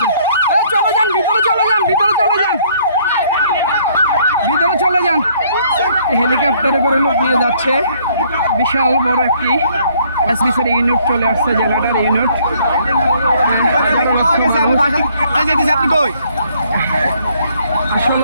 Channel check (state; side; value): inverted; both; correlation -0.64